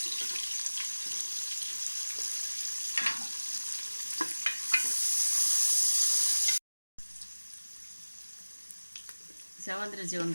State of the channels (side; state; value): both; inverted; correlation -1.00